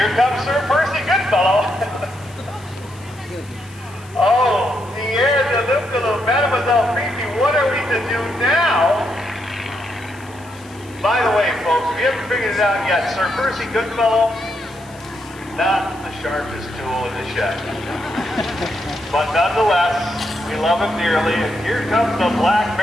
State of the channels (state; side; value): noise; left; hiss, 24 dB below the sound